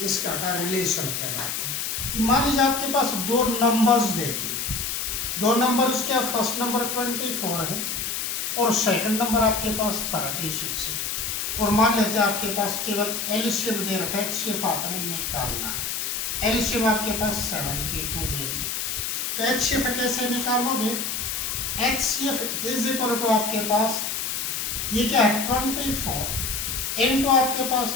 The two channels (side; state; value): left; noise; hiss, 2 dB below the sound